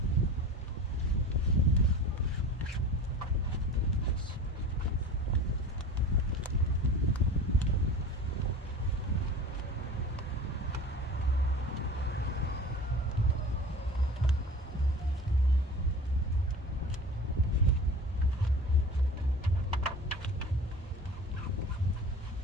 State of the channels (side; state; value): both; normal; correlation 0.38